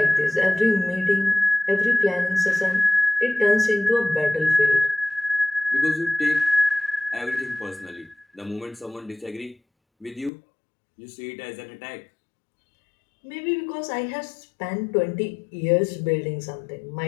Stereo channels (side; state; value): right; drops out; at 10.3 s